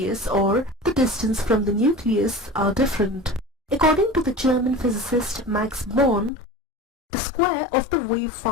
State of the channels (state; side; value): drops out; right; at 6.3 s